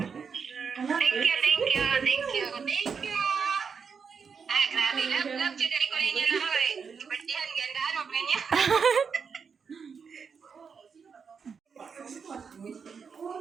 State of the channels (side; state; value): left; quieter; 6.0 dB